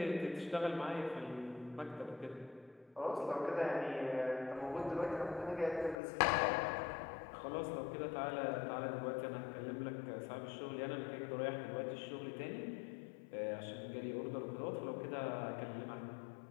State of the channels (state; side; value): drops out; right; at 6.0 s